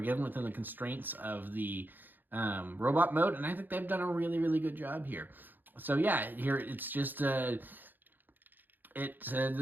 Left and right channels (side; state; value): left; late; 0.089 ms